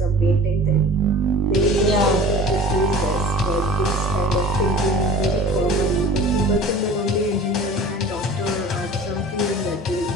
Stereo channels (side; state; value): both; normal; correlation 0.42